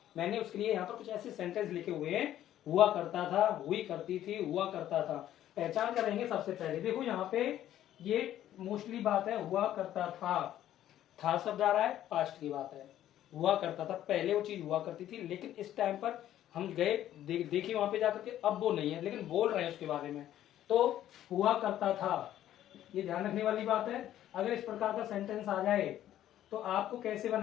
मैंने उसके लिए यहाँ पर कुछ ऐसे सेंटेंस लिखे हुए हैं। हुआ करता था, हुई करती थी, हुआ करता था। पहचान करेंगे सबसे पहले। देखो यहाँ पे ये मोस्टली बात है हुआ करता था शब्द आ रहा है, पास्ट की बात है। हुआ करता था, पहले वो चीज हुआ करती थी लेकिन इस टाइम पर हम गए देखिए वहां पे जाकर के अब वो नहीं है, लेकिन बोल रहे हैं उसके बारे में। तो हुआ करता था, ये ध्यान रखने वाली बात है। अगर इस प्रकार का सेंटेंस आ जाए तो आपको कैसे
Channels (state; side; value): quieter; right; 12.2 dB